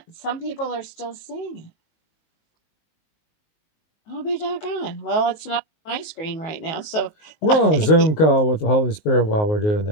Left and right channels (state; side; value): late; right; 19 ms